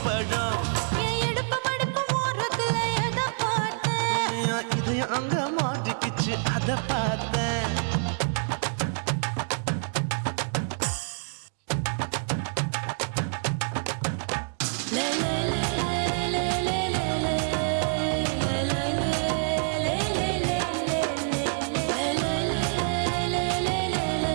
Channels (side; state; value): left; silent; digital silence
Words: பழம். என் இடுப்பு மடுப்பு ஓரத்துல எதை பார்த்தேன். என் இதயம் அங்க மாட்டிக்கிச்சு அத பார்த்தேன்.